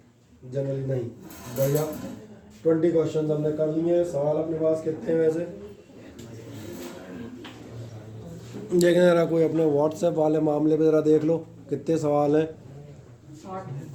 जनरली नहीं। बढ़िया। 20 क्वेश्चन हमने कर लिए हैं। सवाल अपने पास कितने हैं वैसे देखने जरा, कोई अपने व्हाट्सएप वाले मामले पे ज़रा देख लो कितने सवाल हैं। 60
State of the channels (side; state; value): both; identical; correlation 1.00